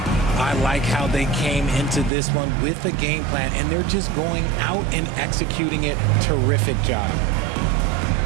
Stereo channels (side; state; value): left; drops out; at 2.1 s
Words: I like how they came into this one with a game plan, and they're just going out and executing it. Terrific job.